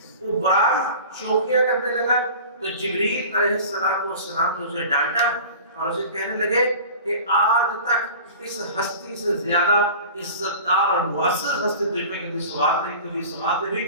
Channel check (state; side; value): inverted; both; correlation -0.39